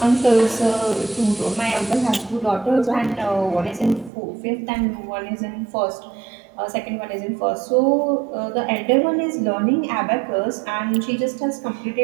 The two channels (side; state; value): left; drops out; at 4.1 s